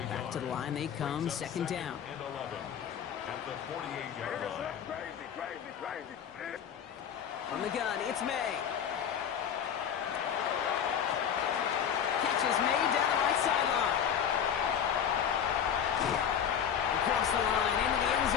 Back to the line they come, 2nd down. And 11 at the 48-yard line. Crazy. From the gun, it's May. Catch is made down the right sideline. Across the line, into the end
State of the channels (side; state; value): right; quieter; 8.5 dB